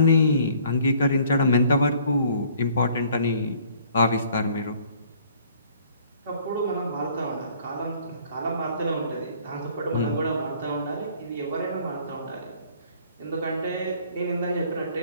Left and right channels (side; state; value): both; inverted; correlation -0.57